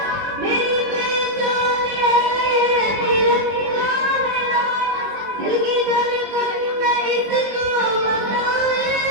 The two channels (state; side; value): late; left; 21 ms